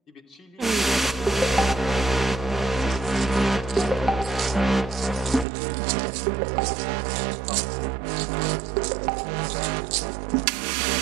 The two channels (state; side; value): drops out; left; at 5.5 s